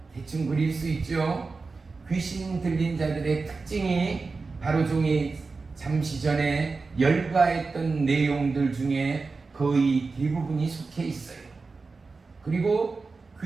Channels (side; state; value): left; quieter; 4.2 dB